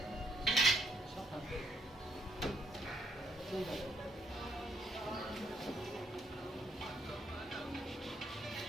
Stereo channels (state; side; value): normal; both; correlation 0.72